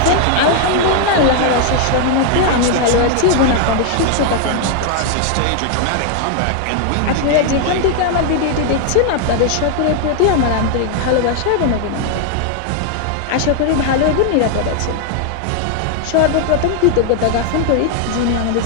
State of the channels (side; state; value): both; different; correlation 0.00